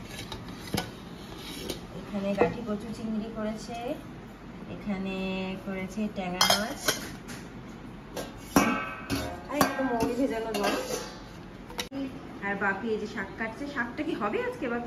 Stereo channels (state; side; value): identical; both; correlation 1.00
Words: এখানে গাঠি কচু চিংড়ি করেছে, এখানে করেছে ট্যাংরা মাছ, আর একটু মৌরি ভেজানো জল। আর বাপি এই যে শাক কাটছে। শাকটা কি হবে আজকে